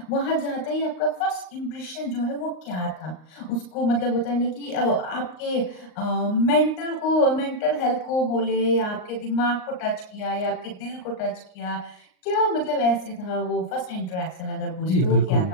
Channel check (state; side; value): late; right; 38 ms